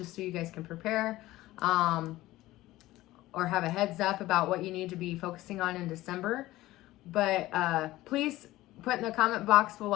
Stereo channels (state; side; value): quieter; right; 17.0 dB